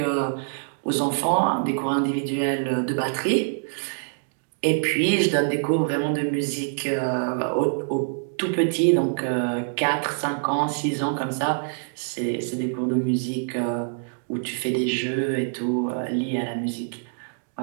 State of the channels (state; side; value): silent; left; digital silence